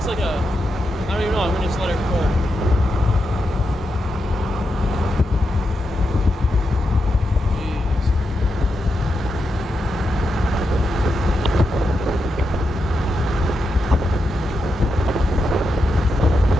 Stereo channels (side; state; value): both; normal; correlation 0.86